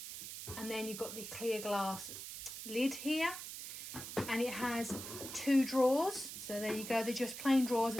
And then you've got the clear glass lid here. And it has 2 drawers, so there you go. They're just plain drawers,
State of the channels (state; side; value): noise; right; hiss, 9 dB below the sound